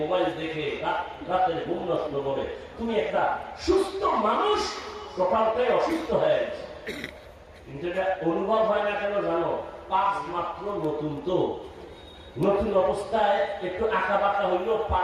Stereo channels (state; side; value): identical; both; correlation 1.00